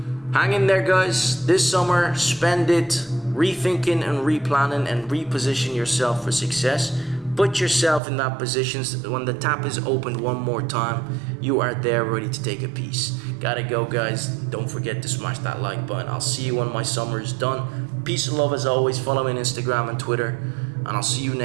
Hang in there, guys. This summer, spend it rethinking and replanning and reposition yourself for success. Put yourself in that position. When the tap is opened one more time, you are there ready to take a piece. Gotta go, guys. Don't forget to smash that like button. I'll see you when my summer is done. Peace and love as always. Follow me on Instagram and Twitter, and I'll see you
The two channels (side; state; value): left; drops out; at 8.0 s